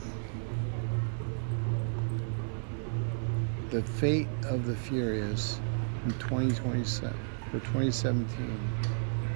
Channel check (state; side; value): silent; left; 56 dB below the other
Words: The Fate of the Furious in 2027 for 2017.